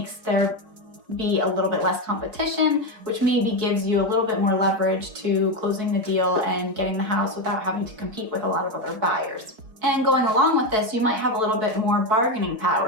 there be a little bit less competition, which maybe gives you a little bit more leverage to closing the deal and getting the house without having to compete with a lot of other buyers. And going along with this, you might have a little bit more bargaining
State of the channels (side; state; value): left; late; 4.4 ms